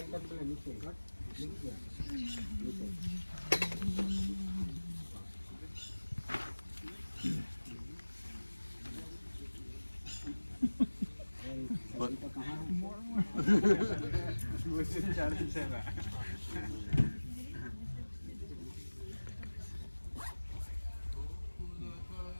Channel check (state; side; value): inverted; both; correlation -1.00